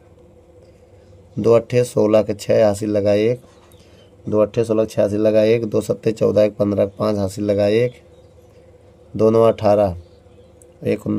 2 अट्ठे 16 के 6 हासिल लगा 1, 2 अट्ठे 16 6 हासिल लगा 1, 2 सत्ते 14 1 15 5 हासिल लगा 1, 2 9 18, 1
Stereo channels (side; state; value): both; identical; correlation 1.00